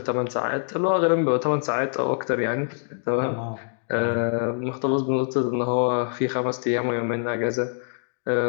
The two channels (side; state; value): right; silent; digital silence